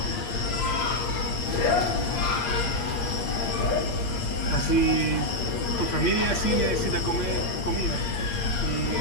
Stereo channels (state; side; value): late; right; 8.5 ms